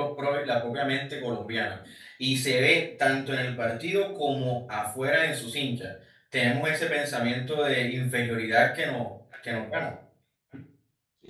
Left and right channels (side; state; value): both; identical; correlation 1.00